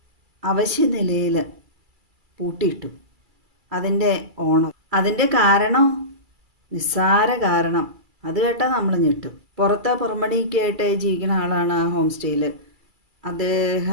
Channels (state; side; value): late; left; 2.3 ms